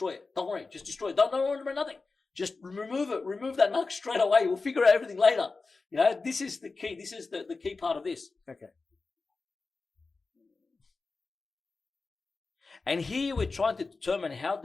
it. Don't worry, just destroy it. Don't worry about nothing. Just remove it. Remove that NUC straight away. We'll figure out everything later. This is the key. This is the key part of this. Okay. And here we're trying to determine how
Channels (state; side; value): quieter; right; 4.0 dB